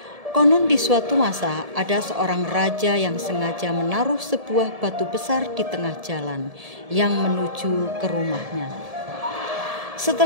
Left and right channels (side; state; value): left; late; 1.7 ms